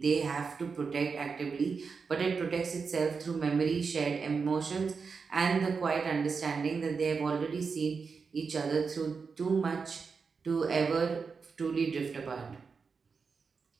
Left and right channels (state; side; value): quieter; left; 5.2 dB